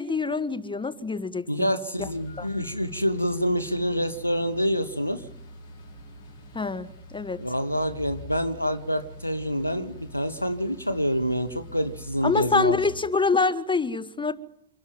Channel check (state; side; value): inverted; both; correlation -0.39